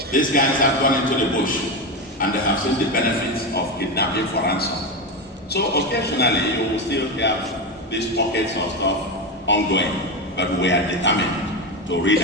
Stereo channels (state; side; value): normal; both; correlation 0.15